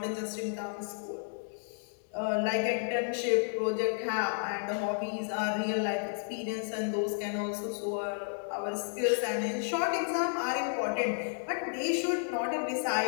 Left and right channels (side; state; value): right; silent; digital silence